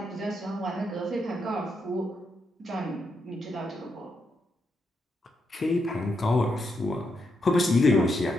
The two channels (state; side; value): normal; both; correlation 0.82